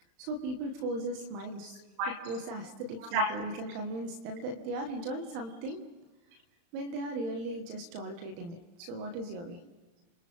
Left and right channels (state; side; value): late; left; 35 ms